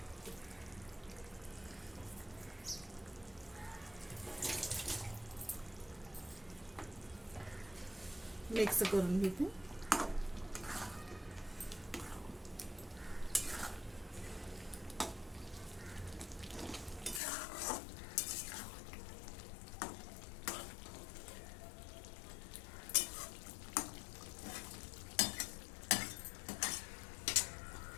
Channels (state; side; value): drops out; right; at 17.2 s